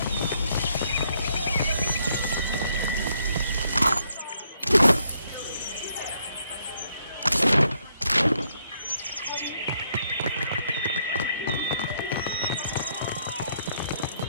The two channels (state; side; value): inverted; both; correlation -0.72